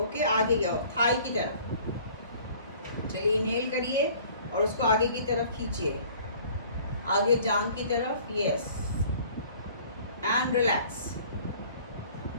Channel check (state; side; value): inverted; both; correlation -0.52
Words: आगे जाओ, थाई की तरफ, चलिए इनहेल करिए और उसको आगे की तरफ खींचिए, आगे जांघ की तरफ, यस, एंड रिलैक्स।